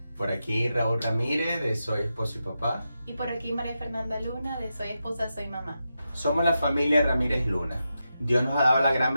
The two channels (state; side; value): inverted; both; correlation -0.88